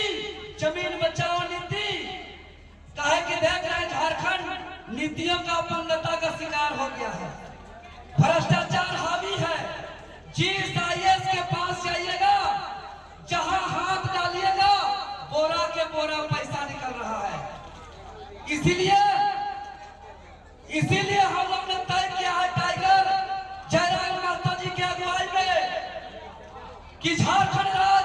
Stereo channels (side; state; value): both; identical; correlation 1.00